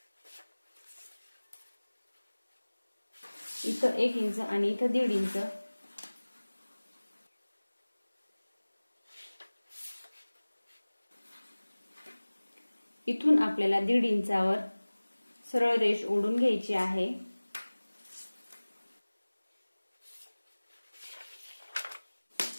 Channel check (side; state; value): both; inverted; correlation -1.00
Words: इथं 1 इंच आणि इथं 1.5 इंच. इथून आपल्याला 1.5 इंचावर सरळ रेष ओढून घ्यायची आहे.